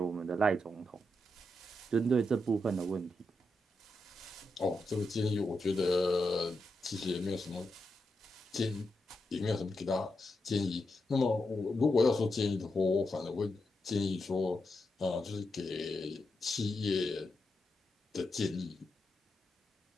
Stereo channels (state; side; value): normal; both; correlation 0.86